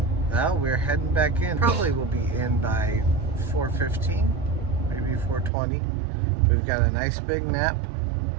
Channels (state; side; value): drops out; left; at 5.5 s